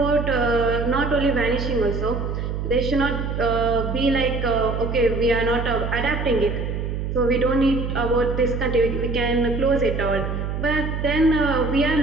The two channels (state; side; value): noise; right; hum, 3 dB below the sound